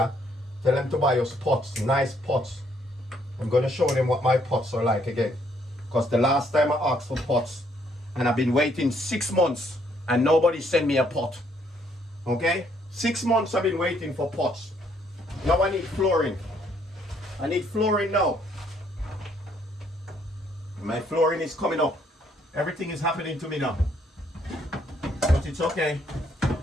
Tell them to buy us pots, nice pots. I'm going to show them what my pots are like again. Because the last time I asked for pots, and I've been waiting 6 months, and nobody sent me a pot. Okay? 6 months I've been waiting for pots. Now I need flooring. I need flooring now. My flooring is coming up. Everything is happening to me now. But it's okay.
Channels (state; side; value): normal; both; correlation 0.68